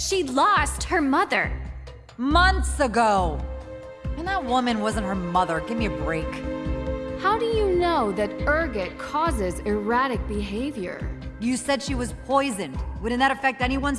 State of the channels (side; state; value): both; identical; correlation 1.00